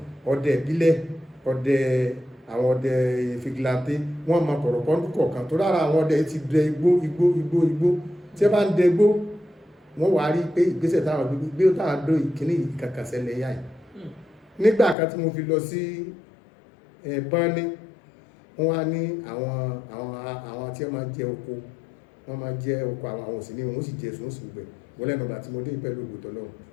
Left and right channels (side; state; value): right; drops out; at 15.0 s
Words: ọdẹ ìbílẹ̀ ọdẹ àwọn ọdẹ fìgìláńtì wọ́n mọ kọ̀rọ̀kọ́ lúkọ̀ọ̀kan tó lára àwọn ọdẹ ti dẹ igbó tí ẹ bá ń dẹ igbó wọ́n wá rí pé ìgbésẹ̀ táwọn gbé táwọn dó ìkíní kankan ṣẹlẹ̀ yá yìí nígbà kan tí mo fi lọ sí Báni wọ́n wá ní àwọn tí wọ́n máa jẹ oko àwọn òsì ní wọ́n sì jẹ sùn sí gbẹ̀ wọ́n lẹ́nu ọ̀gbà tí mo dé pẹ̀lú ògbòtọ́ lọ́wọ́